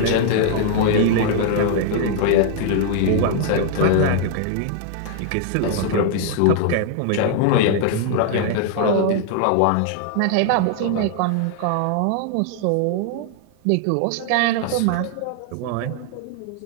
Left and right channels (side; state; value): both; different; correlation 0.00